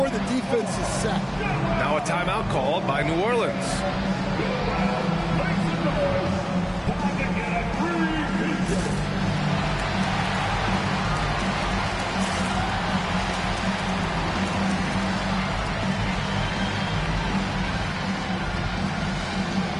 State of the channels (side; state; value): both; identical; correlation 1.00